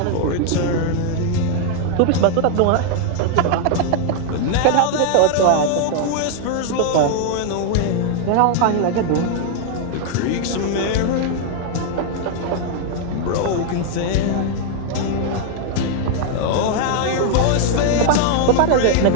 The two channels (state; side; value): different; both; correlation 0.00